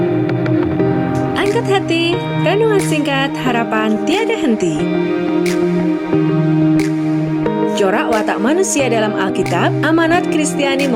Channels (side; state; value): both; identical; correlation 1.00